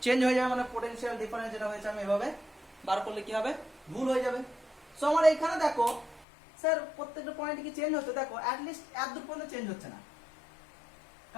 চেঞ্জ হয়ে যাবে, মানে পোটেনশিয়াল ডিফারেন্স যেটা হয়েছে আমি এভাবে বার করলে কি হবে? ভুল হয়ে যাবে। সো আমার এইখানে দেখো স্যার প্রত্যেকটা পয়েন্টে কি চেঞ্জ হচ্ছে? দেখো অ্যাটলিস্ট এত দূর পর্যন্ত চেঞ্জ হচ্ছে না,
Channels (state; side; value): drops out; right; at 6.2 s